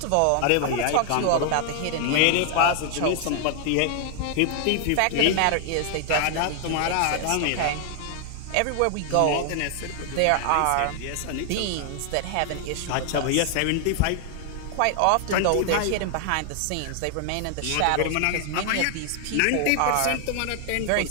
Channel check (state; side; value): different; both; correlation 0.00